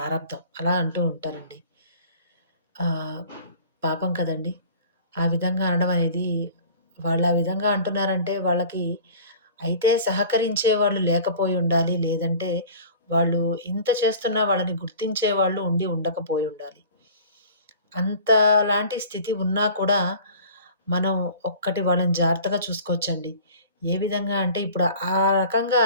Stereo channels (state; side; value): inverted; both; correlation -0.44